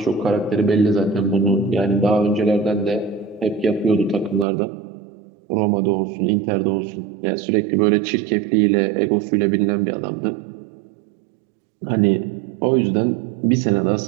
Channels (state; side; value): drops out; left; at 4.5 s